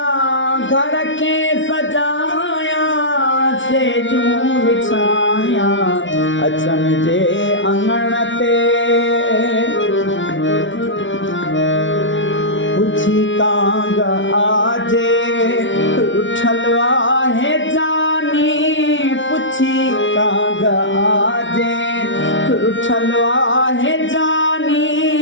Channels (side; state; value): right; late; 0.56 ms